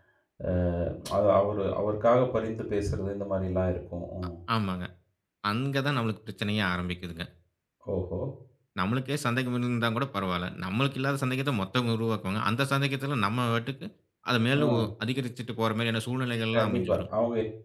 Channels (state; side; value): identical; both; correlation 1.00